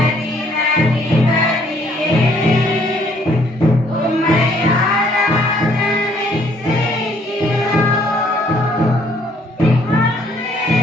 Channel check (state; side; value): normal; both; correlation 0.64